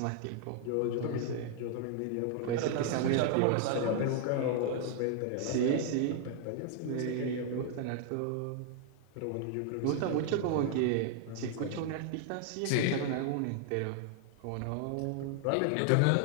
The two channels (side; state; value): both; different; correlation 0.00